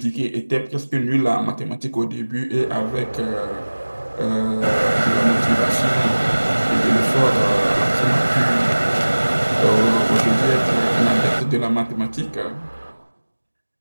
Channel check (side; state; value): both; inverted; correlation -1.00